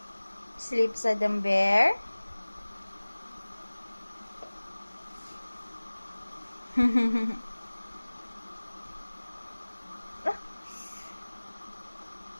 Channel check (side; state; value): both; inverted; correlation -1.00